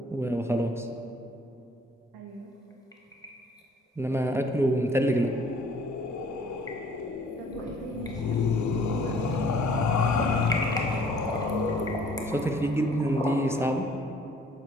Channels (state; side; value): normal; both; correlation 0.57